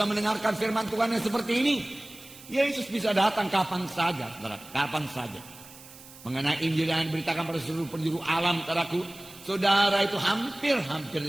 mendengarkan firman Tuhan yang seperti ini. Yesus bisa datang kapan saja, saudara, kapan saja. Mengenai Injil yang diberitakan pada seluruh penjuru alam, saudaraku, saudara itu hampir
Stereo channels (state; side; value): noise; right; hiss, 19 dB below the sound